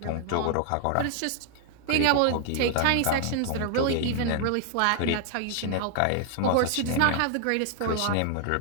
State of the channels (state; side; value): different; both; correlation 0.00